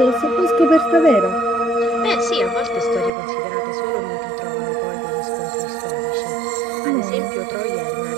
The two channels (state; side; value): drops out; left; at 3.1 s